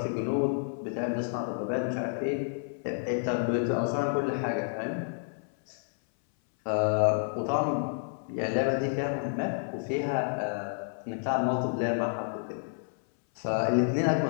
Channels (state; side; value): silent; right; 58 dB below the other